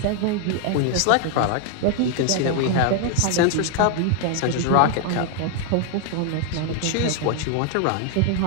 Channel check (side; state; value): both; different; correlation 0.00